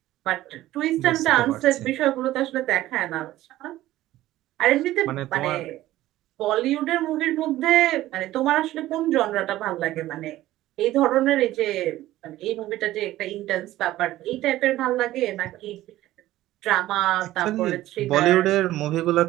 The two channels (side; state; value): left; quieter; 15.3 dB